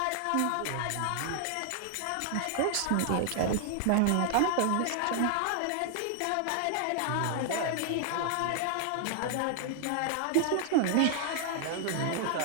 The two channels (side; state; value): both; different; correlation 0.00